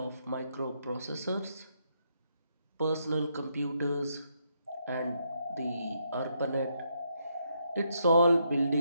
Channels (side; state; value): both; inverted; correlation -0.77